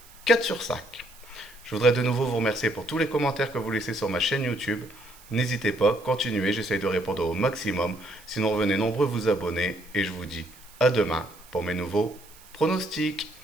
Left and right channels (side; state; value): right; noise; hiss, 23 dB below the sound